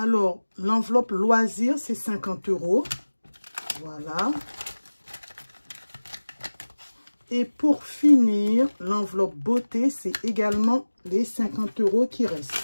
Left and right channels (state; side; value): inverted; both; correlation -1.00